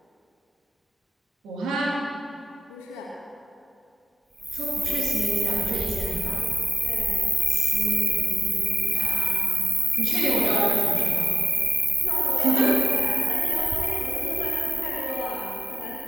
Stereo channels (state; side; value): normal; both; correlation 0.94